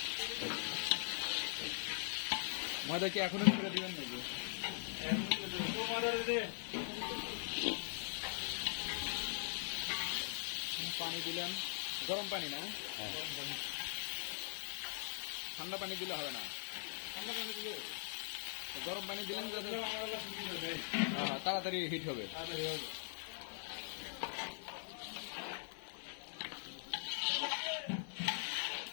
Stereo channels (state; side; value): silent; right; digital silence